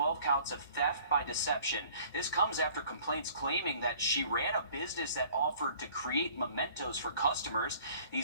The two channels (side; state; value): both; inverted; correlation -0.53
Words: counts of theft by deception. This comes after complaints claiming that she ran a business that offered to create mementos for customers.